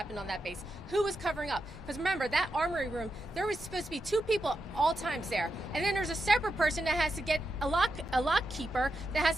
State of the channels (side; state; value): both; normal; correlation 0.87